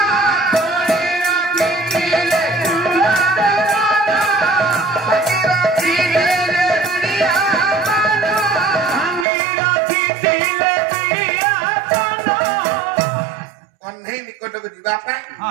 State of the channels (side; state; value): left; drops out; at 9.2 s